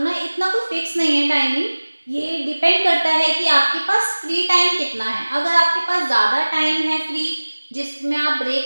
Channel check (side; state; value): both; inverted; correlation -1.00